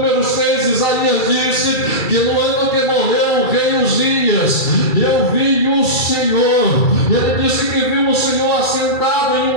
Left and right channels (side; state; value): right; late; 2.3 ms